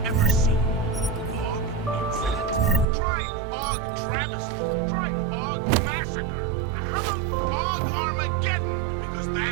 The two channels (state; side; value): drops out; left; at 2.9 s